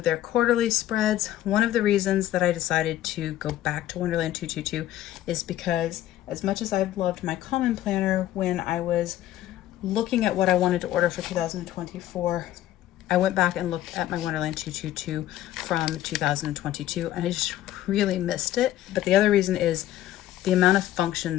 their quarterly spreads. One of the reasons that I decided to go back to Wonderland222 is because as much as I've loved my common planner, when I was looking at what I wanted to order for 2024, I went back and looked at my Wonderland222 from 2022 and I just really missed it. But the other reason is the amount of function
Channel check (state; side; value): quieter; right; 13.5 dB